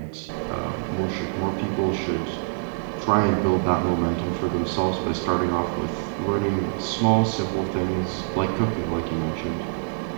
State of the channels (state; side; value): silent; left; digital silence